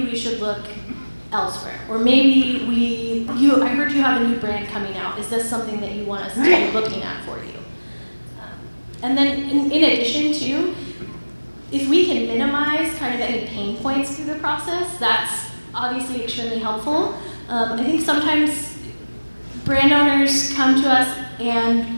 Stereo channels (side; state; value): both; inverted; correlation -1.00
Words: we should look elsewhere. Or maybe I heard you have a new brand coming out. Is this something that you want us to be looking at for you? And then in addition to, if we can minimize kind of any pain points through the process, that's obviously extremely helpful. I think sometimes brand owners come to us and